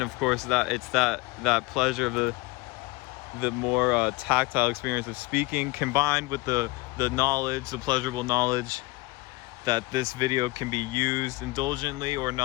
of course it's that pleasure of the more tactile experience of speaking, combined with the knowledge, the pleasurable knowledge that this video can be used indulgently or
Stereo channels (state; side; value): quieter; right; 22.9 dB